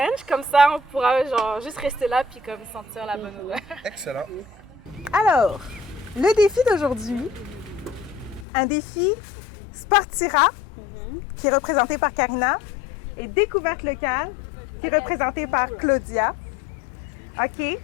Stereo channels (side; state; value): right; drops out; at 8.5 s